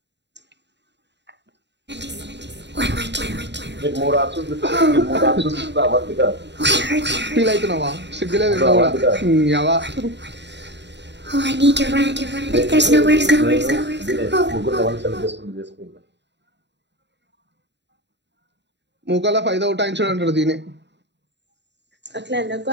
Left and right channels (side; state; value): left; late; 0.51 ms